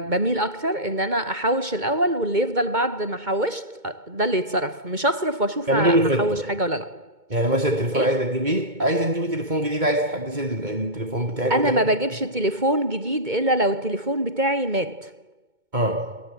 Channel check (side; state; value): left; late; 2.2 ms